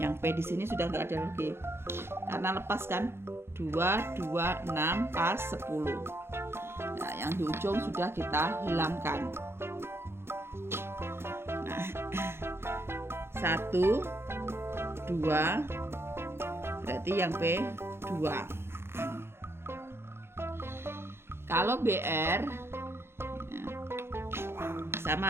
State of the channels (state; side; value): late; left; 0.12 ms